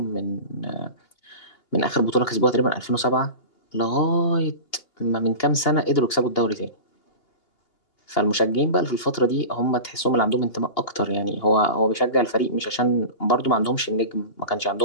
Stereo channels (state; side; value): late; right; 2.8 ms